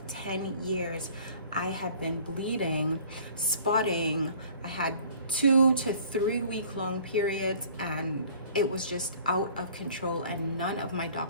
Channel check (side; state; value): both; inverted; correlation -0.50